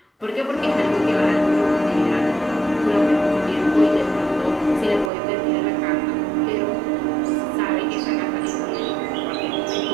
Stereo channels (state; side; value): drops out; left; at 5.1 s